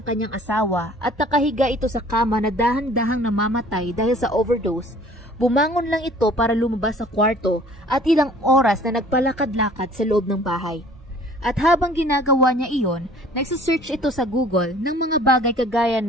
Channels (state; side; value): normal; both; correlation 0.52